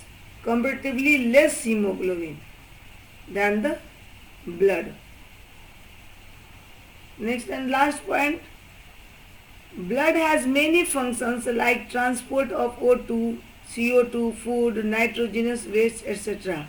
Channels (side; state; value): both; identical; correlation 1.00